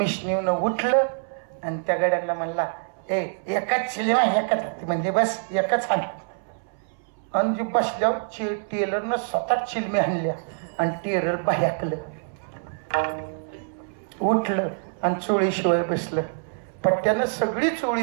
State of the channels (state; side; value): silent; left; 61 dB below the other